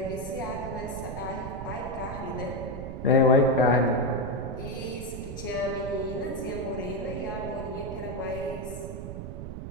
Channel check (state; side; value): noise; right; rumble, 7 dB below the sound